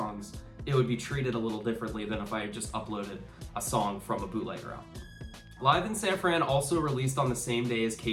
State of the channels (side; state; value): both; identical; correlation 1.00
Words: it would be treated a little differently than if I just uploaded a song from a bootlegger album. Live in San Fran also released on the same day as